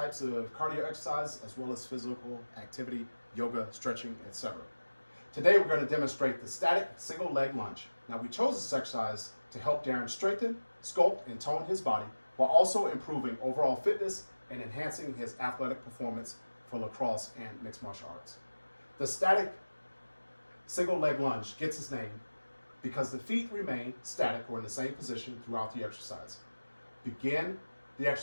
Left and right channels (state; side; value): inverted; both; correlation -1.00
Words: of cardio exercise, as well as physical activity, yoga, stretching, etc. Today, we're going to demonstrate the static single leg lunge. Now, we chose this exercise to help Darren strengthen, sculpt, and tone his body while also improving overall fitness and enhancing his athletic performance for lacrosse and mixed martial arts. The static single leg lunge gets its name because the feet remain static or in the same position throughout the exercise. Begin the